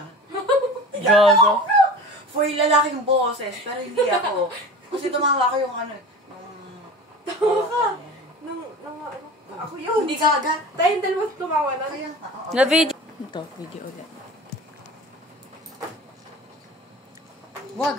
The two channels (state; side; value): normal; both; correlation 0.37